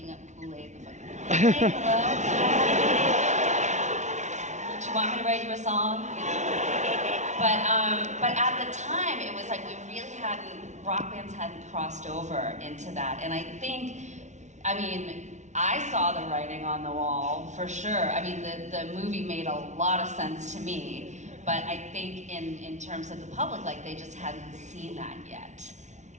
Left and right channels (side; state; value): left; late; 0.34 ms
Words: up Kool-Aid, the fucking Kool-Aid, hello? Do you want me to write you a song? You know? But at the time, it was like rock bands hadn't crossed over into that. And I think, I mean, I saw the writing on the wall, for sure. I mean, the movie made a lot of sense to me, but I think in terms of the public, like, they just hadn't seen that yet.